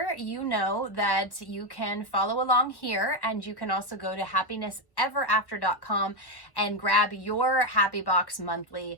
you know that you can follow along here, and you can also go to happinessEverAfter.com and grab your Happy Box monthly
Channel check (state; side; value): late; right; 1.1 ms